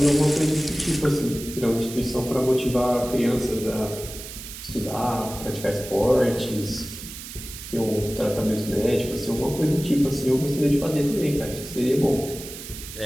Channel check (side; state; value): right; noise; hiss, 12 dB below the sound